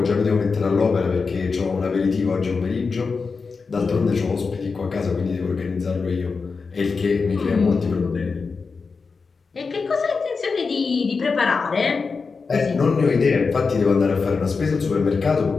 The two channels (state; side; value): quieter; right; 4.7 dB